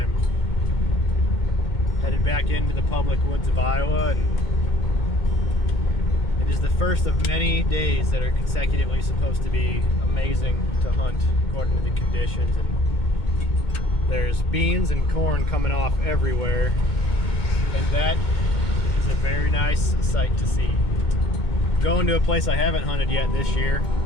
Headed back into the public woods of Iowa, and it is the first of many days that are consecutively supposed to be amazing to hunt according to the conditions. And there's beans and corn coming off everywhere, and that is a very nice sight to see. Going to a place I haven't hunted yet this year,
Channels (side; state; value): right; late; 2.2 ms